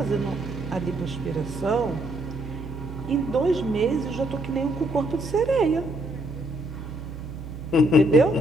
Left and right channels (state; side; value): noise; right; hum, 11 dB below the sound